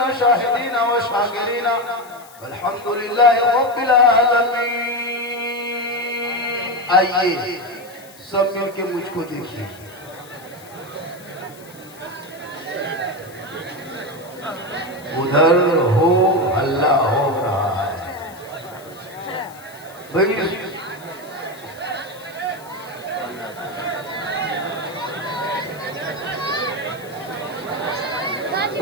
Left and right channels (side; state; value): left; noise; hiss, 22 dB below the sound